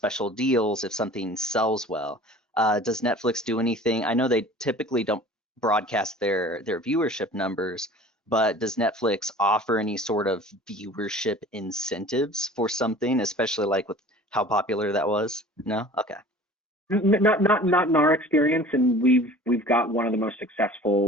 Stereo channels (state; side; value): normal; both; correlation 0.44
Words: deals if something sells well. Does Netflix do anything? I know they typically don't broadcast their viewership numbers, but does Netflix offer any sort of viewership incentives for something, especially like with how popular that was? No? Okay. Not in our experience, and we've got one of the most